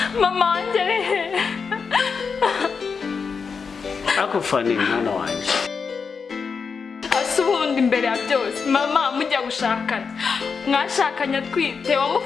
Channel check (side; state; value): right; quieter; 5.5 dB